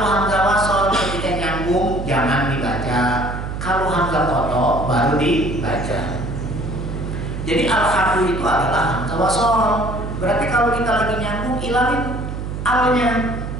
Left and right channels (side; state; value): right; noise; hum, 6 dB below the sound